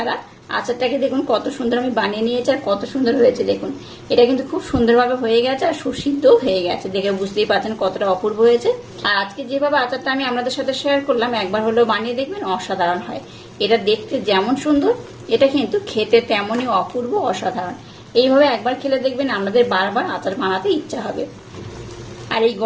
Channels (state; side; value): identical; both; correlation 1.00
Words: আচারটাকে দেখুন কত সুন্দর আমি বানিয়ে নিয়েছি আর কত সুন্দর হয়েছে। দেখুন এটা কিন্তু খুব সুন্দরভাবে হয়ে গেছে আর সুসিদ্ধও হয়ে গেছে, দেখে বুঝতেই পারছেন কতটা অপূর্ব হয়েছে। আর আজকে যেভাবে আচারটা আমি আপনাদের সাথে শেয়ার করলাম একবার হলেও বানিয়ে দেখবেন, অসাধারণ হয়। এটা দেখতে যেমন সুন্দর এটা কিন্তু খেতে তেমনই অপূর্ব, অসাধারণ। এইভাবে একবার খেলে দেখবেন আপনাদের বারবার আচার বানাতে ইচ্ছা হবে। আর এই